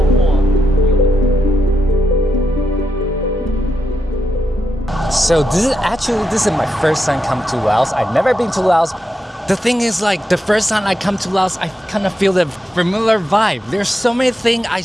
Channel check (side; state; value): both; normal; correlation 0.85